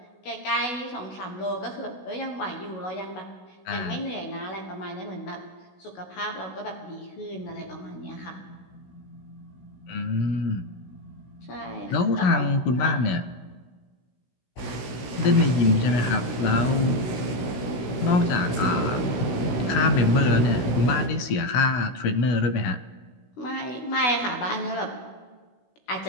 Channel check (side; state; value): right; late; 16 ms